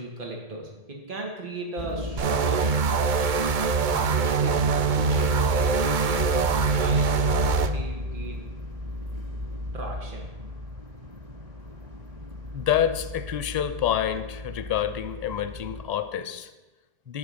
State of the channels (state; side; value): late; left; 2.2 ms